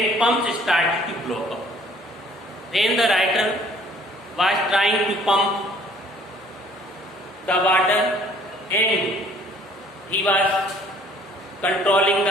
pumps started to block up. When the writer was trying to pump the water and he was controlling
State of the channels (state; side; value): normal; both; correlation 0.57